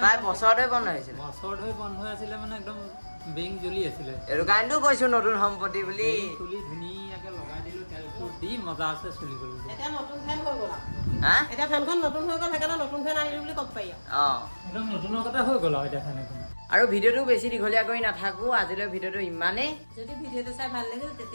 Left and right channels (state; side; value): inverted; both; correlation -1.00